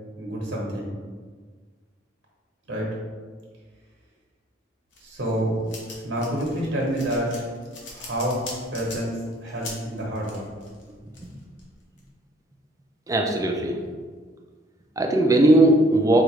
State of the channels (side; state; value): both; normal; correlation 0.59